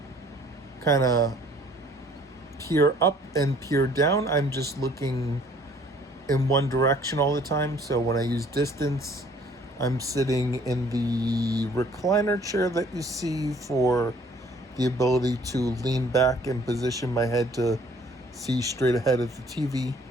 kind of peer up and peer down. I'm just looking in one direction all the time. So when I use distance, I'm sitting in the recliner chair that you see for the ability to lean back and position my head to see straight ahead of the TV,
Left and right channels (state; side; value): normal; both; correlation 0.57